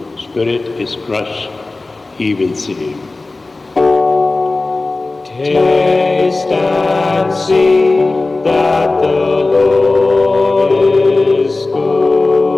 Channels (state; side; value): quieter; right; 3.3 dB